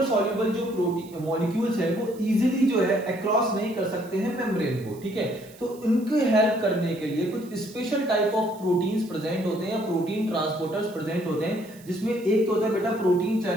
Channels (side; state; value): right; noise; hiss, 23 dB below the sound